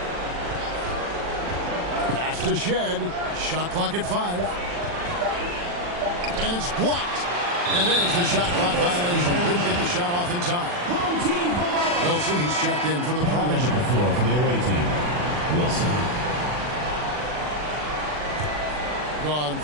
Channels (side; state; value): left; late; 40 ms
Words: Pass to Shed. Shot clock at 5. And it's blocked. And there's the shot clock violation. Couldn't get the shot off in time. Wilson, he's checked in for the Prodigy. The floor for the away team. Wilson. Gone